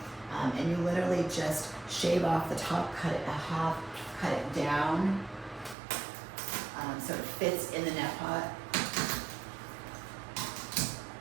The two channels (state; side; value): drops out; left; at 5.8 s